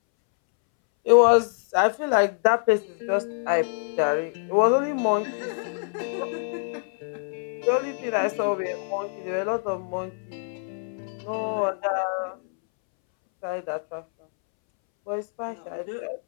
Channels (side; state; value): right; silent; 61 dB below the other